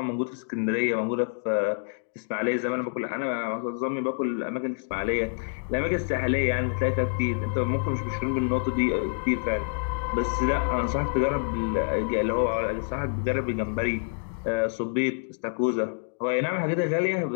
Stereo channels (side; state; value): right; silent; digital silence